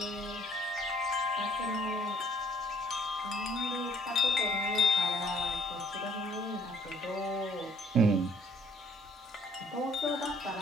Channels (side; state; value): both; normal; correlation 0.60